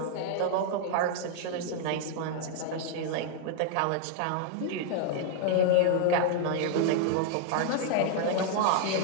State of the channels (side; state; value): both; different; correlation 0.00